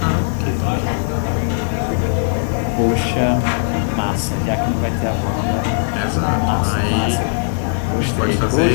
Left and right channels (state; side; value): silent; right; digital silence